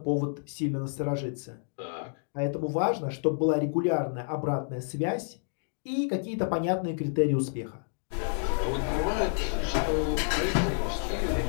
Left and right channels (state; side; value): silent; right; digital silence